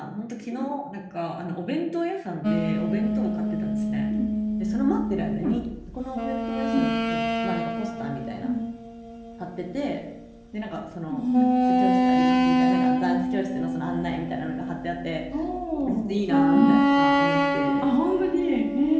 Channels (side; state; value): both; identical; correlation 1.00